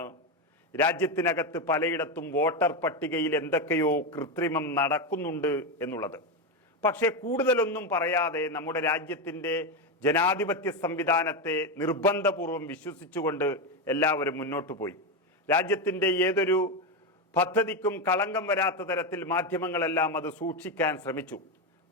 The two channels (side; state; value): both; normal; correlation 0.11